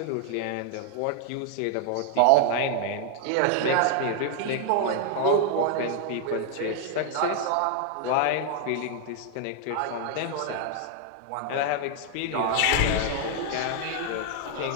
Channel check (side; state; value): both; different; correlation 0.00